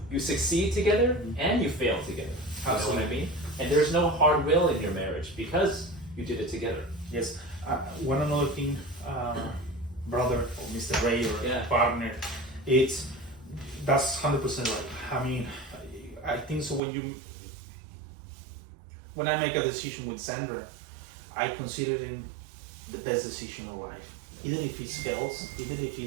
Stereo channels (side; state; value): left; drops out; at 16.8 s